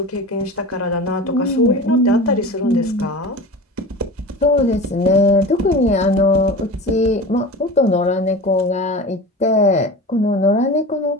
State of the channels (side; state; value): both; normal; correlation 0.33